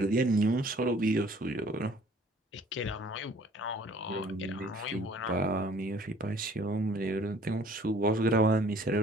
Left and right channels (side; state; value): both; normal; correlation 0.54